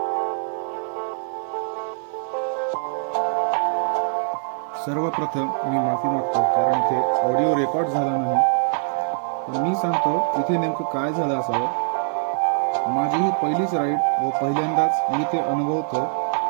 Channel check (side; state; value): left; silent; digital silence